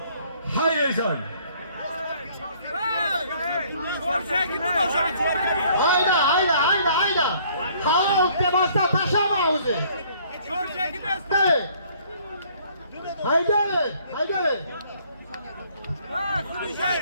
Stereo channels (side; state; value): both; inverted; correlation -0.60